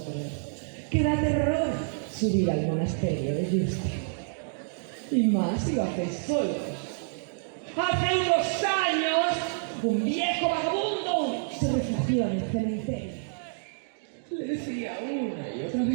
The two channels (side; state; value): left; silent; digital silence